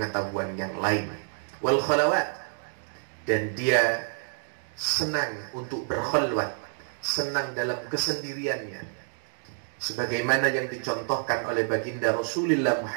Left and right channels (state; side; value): silent; left; 59 dB below the other